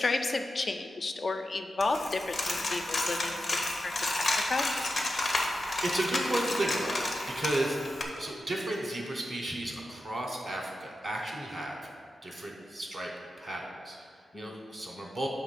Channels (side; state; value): both; normal; correlation 0.90